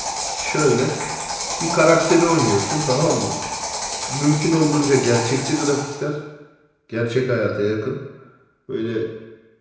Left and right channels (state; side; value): identical; both; correlation 1.00